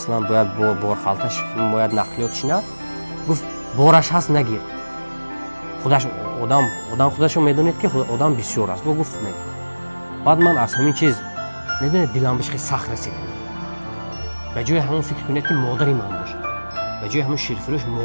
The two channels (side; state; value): both; inverted; correlation -1.00